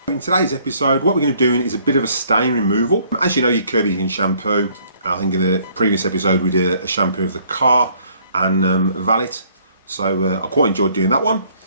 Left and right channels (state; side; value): inverted; both; correlation -0.62